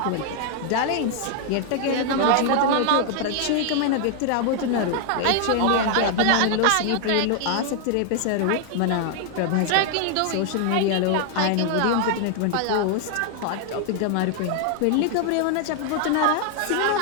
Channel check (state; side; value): different; both; correlation 0.00